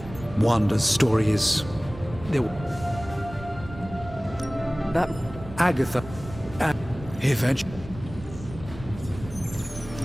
Wanda's story is... That... Agatha... Eventually...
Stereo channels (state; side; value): noise; right; rumble, 14 dB below the sound